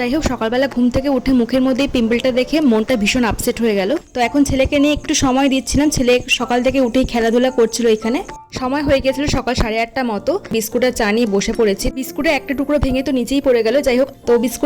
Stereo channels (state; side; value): identical; both; correlation 1.00